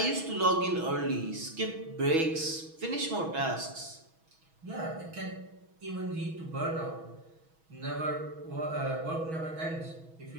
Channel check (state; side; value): late; left; 6.2 ms